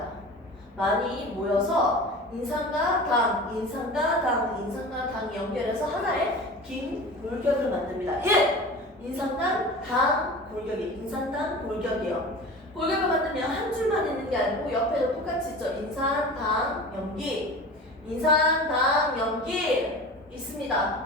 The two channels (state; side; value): normal; both; correlation 0.35